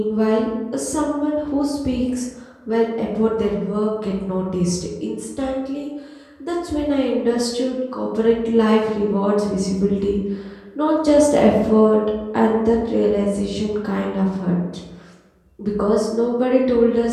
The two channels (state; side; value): identical; both; correlation 1.00